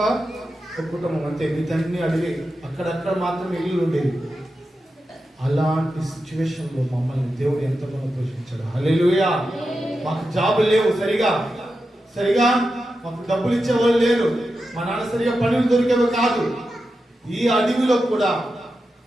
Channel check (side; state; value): both; normal; correlation 0.90